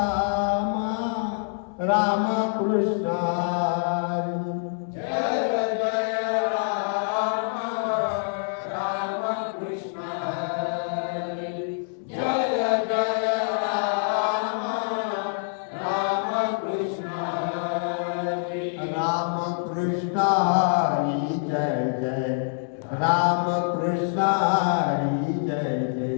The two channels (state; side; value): silent; right; 61 dB below the other